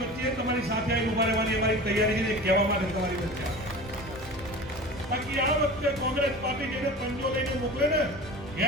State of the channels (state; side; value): normal; both; correlation 0.36